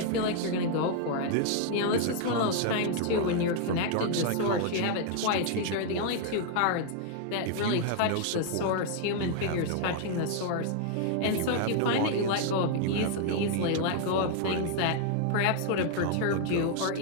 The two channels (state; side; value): different; both; correlation 0.00